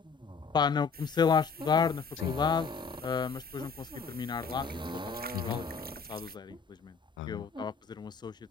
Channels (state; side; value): quieter; right; 5.4 dB